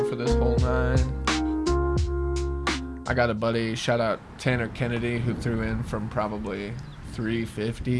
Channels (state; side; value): identical; both; correlation 1.00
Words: for this whole 9. I got a buddy, shout out Tanner Kennedy, who threw in from probably